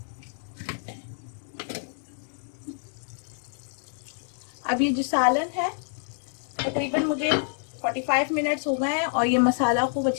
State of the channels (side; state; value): right; silent; digital silence